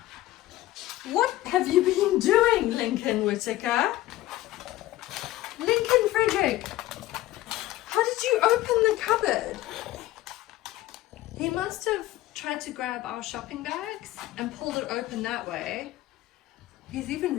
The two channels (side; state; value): right; quieter; 16.0 dB